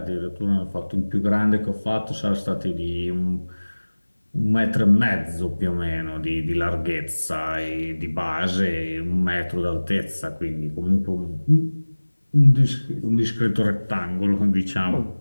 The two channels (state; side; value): inverted; both; correlation -1.00